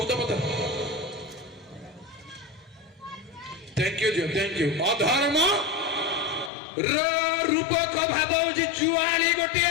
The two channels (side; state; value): right; drops out; at 6.5 s